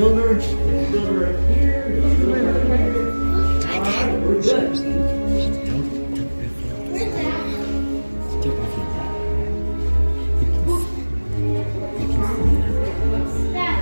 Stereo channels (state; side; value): inverted; both; correlation -1.00